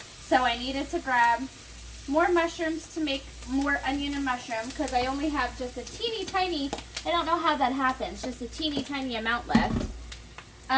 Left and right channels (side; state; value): both; identical; correlation 1.00